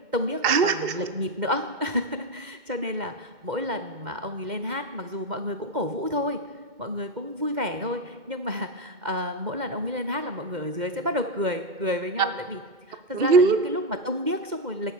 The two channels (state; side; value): late; left; 2.1 ms